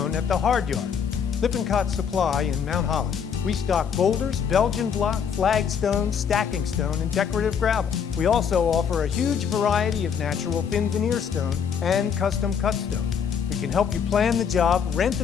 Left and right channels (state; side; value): quieter; right; 7.2 dB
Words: at the Hard Yard. Lippincott Supply in Mount Holly. We stock boulders, Belgian block, flagstone, stacking stone, and decorative gravel. We also offer a huge variety of natural thin veneer stone and custom cut stone. We can help you plan the job, rent